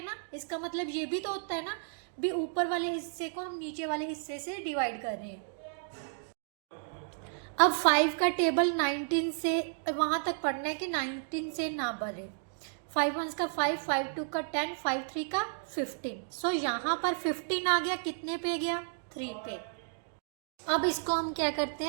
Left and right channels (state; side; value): silent; left; digital silence